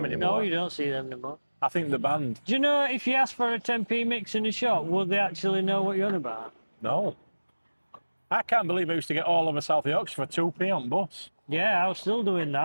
anymore. No, you don't see them anymore. I think the band. Do you know if you ask for a 10p mix in a shop, would they actually know what you're on about? No. I can't believe I used to get all over South Yorkshire for 2p on bus. Yeah, I was still doing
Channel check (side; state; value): both; inverted; correlation -1.00